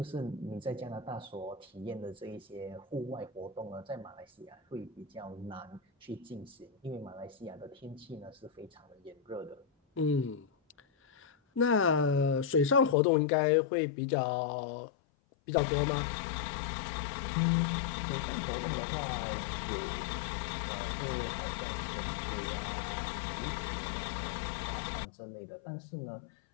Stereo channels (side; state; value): right; drops out; at 13.0 s